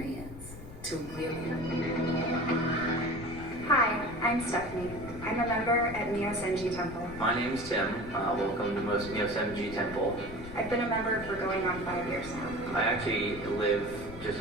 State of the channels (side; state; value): left; noise; rumble, 13 dB below the sound